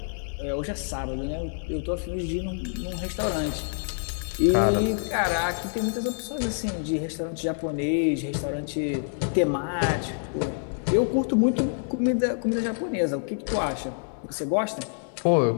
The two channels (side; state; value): right; silent; digital silence